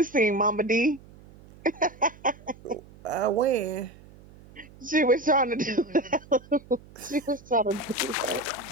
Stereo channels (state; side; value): noise; right; hum, 22 dB below the sound